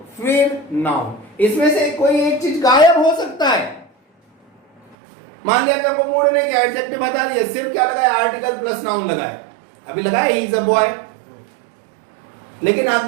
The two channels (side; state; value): left; drops out; at 5.0 s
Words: फिर नाउन। इसमें से कोई एक चीज गायब हो सकता है। मान लिया कि हमको मूड ने कि एडजेक्टिव हटा दिया, सिर्फ क्या लगाया, आर्टिकल प्लस नाउन लगाया। अभी लगाया ही इज अ बॉय। लेकिन